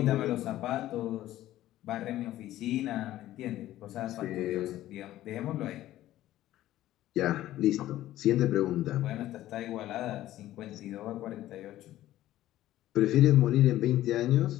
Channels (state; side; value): quieter; right; 14.3 dB